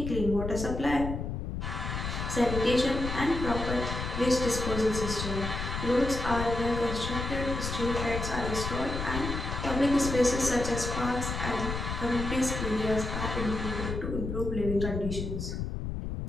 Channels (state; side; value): noise; left; rumble, 4 dB below the sound